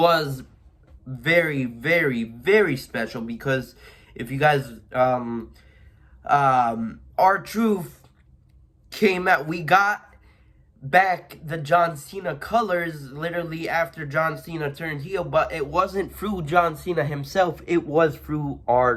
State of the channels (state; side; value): identical; both; correlation 1.00